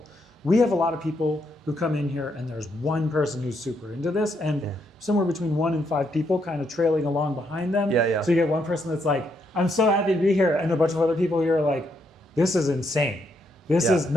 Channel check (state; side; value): normal; both; correlation 0.77